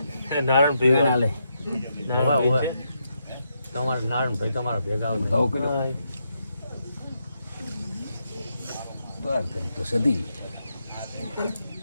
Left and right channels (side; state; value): both; inverted; correlation -0.81